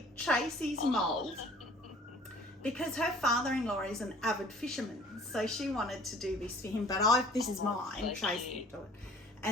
Tracy's mould because her father-in-law is an avid fisherman. So she wanted to do this for him, but this is mine. So Tracy can do it.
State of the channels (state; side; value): normal; both; correlation 0.52